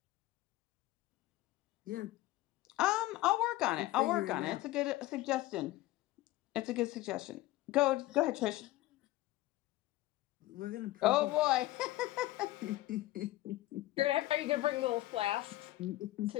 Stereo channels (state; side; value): quieter; right; 17.0 dB